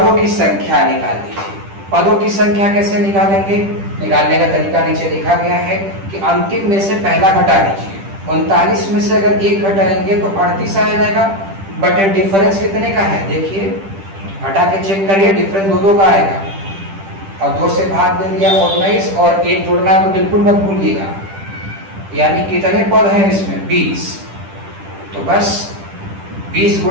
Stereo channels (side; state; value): left; late; 10 ms